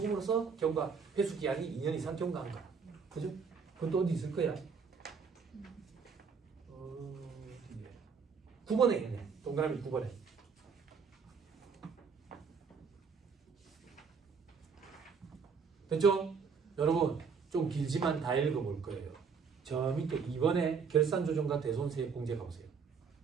경과 회수 기한이 2년 이상 경과한 거. 그죠? 그건 또 어디 있을 거야? 9번에 있네. 동그라미 9번에. 됐죠? 여러분 좀 길지만 다 읽어볼 거예요. 저 밑에 2번에 결산조정과 대손세액 공제 가보세요.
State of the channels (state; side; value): quieter; left; 5.7 dB